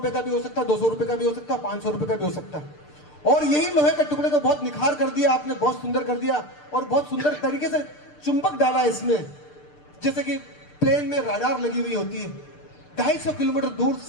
का भी हो सकता है, 200 रुपए का भी हो सकता है, 500 रुपए का भी हो सकता है। और यही लोहे के टुकड़े को बहुत निखार कर दिया आपने, बहुत सुंदर कर दिया और बहुत सुंदर तरीके से चुंबक डाला इसमें। जैसे कि प्लेन में राडार लगी हुई होती है, 250 किलोमीटर दूर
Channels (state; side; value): late; right; 6.7 ms